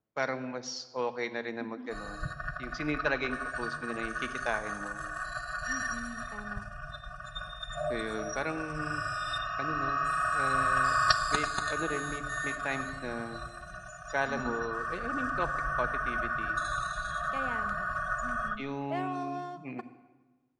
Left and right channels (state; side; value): identical; both; correlation 1.00